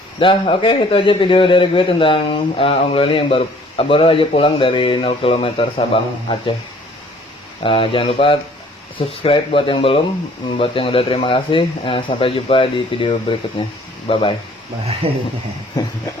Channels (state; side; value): normal; both; correlation 0.56